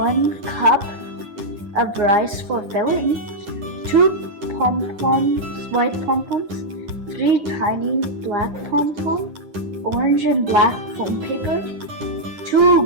cup of rice for filling, 2 pompoms, white pompoms, 3 tiny black pompoms, orange and black foam paper,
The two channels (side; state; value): left; late; 9.8 ms